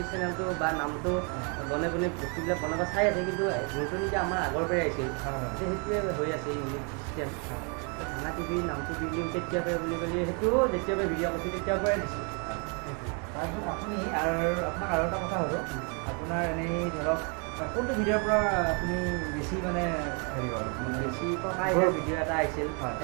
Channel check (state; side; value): quieter; left; 36.0 dB